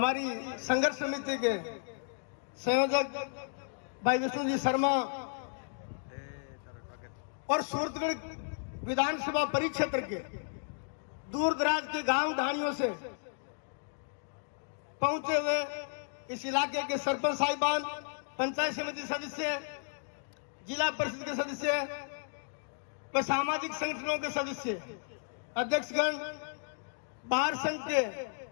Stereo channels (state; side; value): silent; right; digital silence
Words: संघर्ष समिति के संयोजक भाई विष्णु जी शर्मा और सूरतगढ़ विधानसभा परिक्षेत्र के दूर दराज के गांव ढाणियों से पहुंचे हुए इस इलाके के सरपंच साहिबान, पंचायत समिति सदस्य, जिला परिषद के सदस्य व सामाजिक संगठनों के सदस्य, अध्यक्षगण, बाहर संघ के